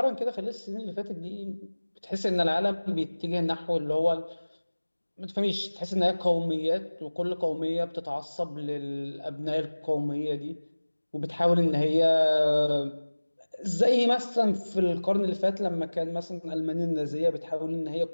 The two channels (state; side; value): inverted; both; correlation -1.00